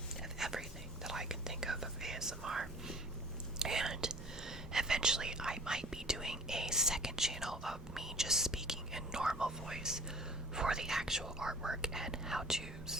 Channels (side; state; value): both; normal; correlation 0.47